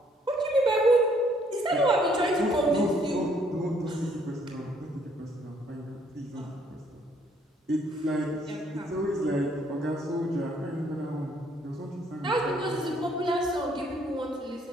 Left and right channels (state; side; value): normal; both; correlation 0.65